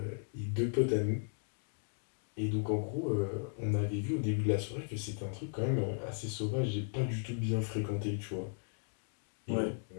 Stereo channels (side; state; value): right; silent; digital silence